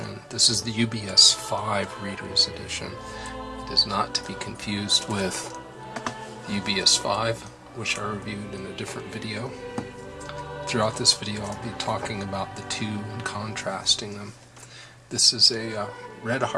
This is the UBS5 Reader's Edition. It is not to be confused with the UBS5, which I reviewed in a different video. Throughout this video I'll be talking about the two and contrasting them. This is a red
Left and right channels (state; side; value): identical; both; correlation 1.00